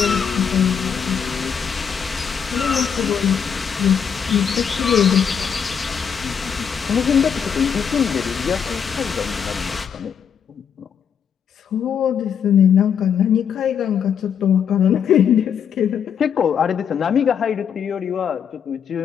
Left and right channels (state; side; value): quieter; right; 7.5 dB